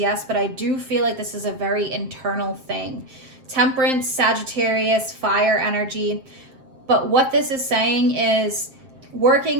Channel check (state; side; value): late; left; 7.6 ms